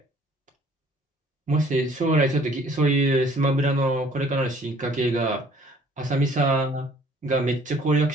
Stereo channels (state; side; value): normal; both; correlation 0.56